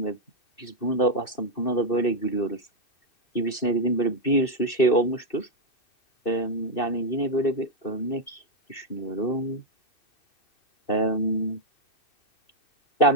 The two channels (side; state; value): right; late; 2.6 ms